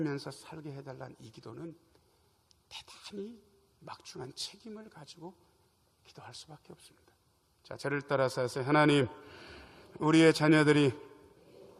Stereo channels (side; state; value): both; identical; correlation 1.00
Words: 살게 해달라는 이 기도는 대단히 막중한 책임을 가지고 기도할 수밖에 없습니다. 자, 저를 따라서 하세요. 하나님, 우리의 자녀들이